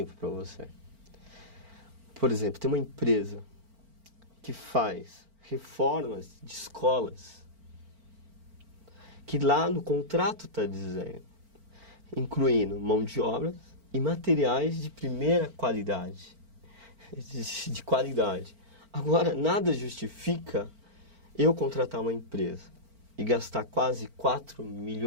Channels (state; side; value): late; left; 4.4 ms